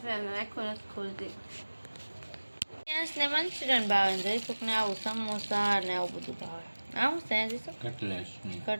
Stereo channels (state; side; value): inverted; both; correlation -1.00